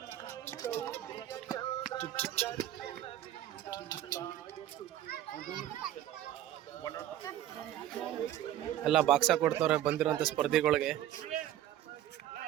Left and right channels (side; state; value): left; quieter; 12.7 dB